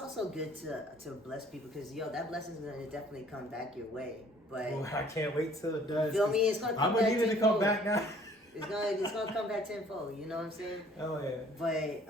good to bless people, because that blessing is gonna definitely come back your way. But I can't wait till it does. You feel me? It's gonna come back. I'm gonna need it to come back now. It's gonna come back tenfold. You know what I'm saying? Oh yeah. But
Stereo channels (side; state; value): both; normal; correlation 0.56